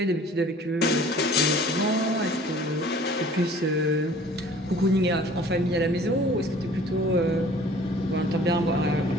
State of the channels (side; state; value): both; normal; correlation 0.49